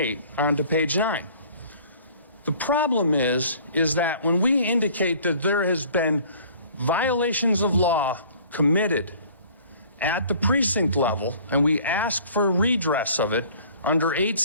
onto page 9. The problem is that when we indicate that there has been violations of law committed at the precinct level, and we ask for redress of it under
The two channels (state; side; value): inverted; both; correlation -0.51